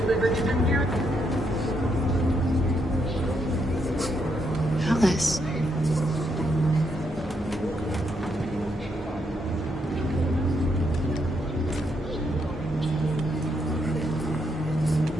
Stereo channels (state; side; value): normal; both; correlation 0.77